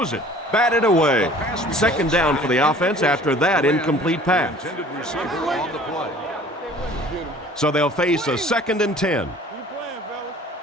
it. Batted away. Second down for the offense after that incomplete pass. So they'll face a 2nd and 10.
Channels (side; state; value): both; normal; correlation 0.49